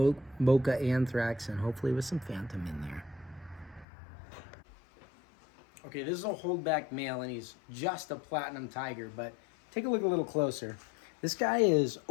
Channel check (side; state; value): right; drops out; at 3.9 s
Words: Anthrax, and hopefully with some Phantom in there. Okay, this is a holdback male, and he's just a platinum tiger, but take a look a little closer. This guy is